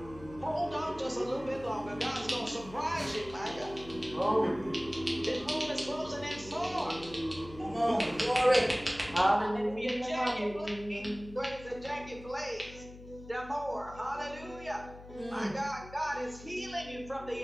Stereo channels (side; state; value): left; noise; hum, 17 dB below the sound